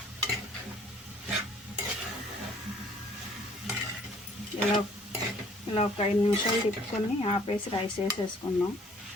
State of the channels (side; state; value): both; normal; correlation 0.58